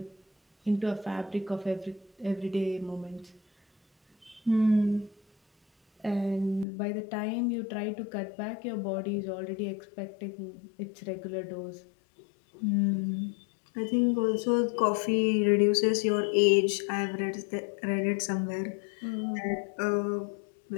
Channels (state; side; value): drops out; right; at 6.7 s